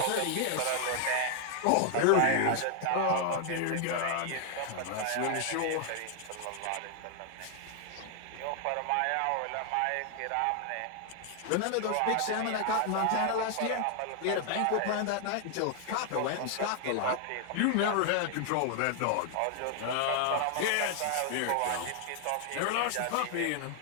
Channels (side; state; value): both; different; correlation 0.00